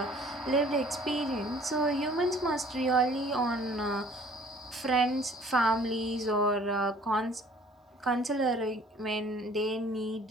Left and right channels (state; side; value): normal; both; correlation 0.54